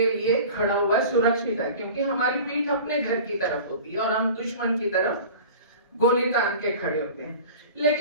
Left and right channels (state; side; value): inverted; both; correlation -0.39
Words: लिए खड़ा हुआ सुरक्षित है, क्योंकि हमारी पीठ अपने घर की तरफ होती है और हम दुश्मन की तरफ गोली तान के खड़े होते हैं।